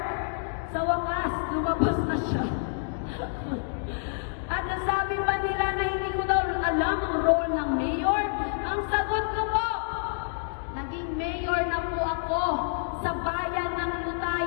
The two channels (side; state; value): right; silent; digital silence